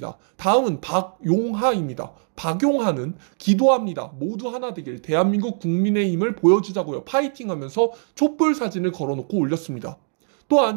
다음은 박용하입니다. 박용하는 기도합니다. 모두 하나 되길 대한민국 국민의힘을 보여주자고요. 파이팅 하면서 촛불 사진을 걸어놓고 올렸습니다.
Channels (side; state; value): left; silent; 63 dB below the other